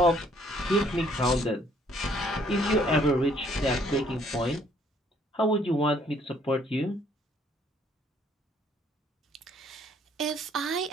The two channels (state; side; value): normal; both; correlation 0.63